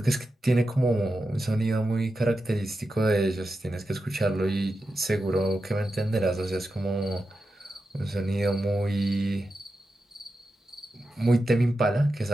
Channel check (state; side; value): normal; both; correlation 0.90